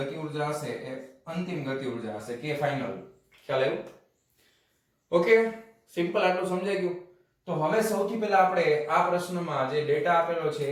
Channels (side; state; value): both; identical; correlation 1.00